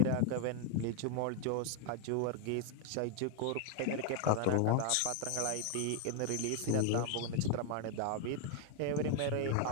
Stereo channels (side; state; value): both; different; correlation 0.00